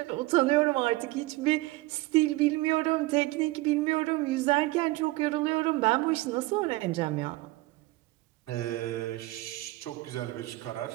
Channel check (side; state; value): left; quieter; 20.4 dB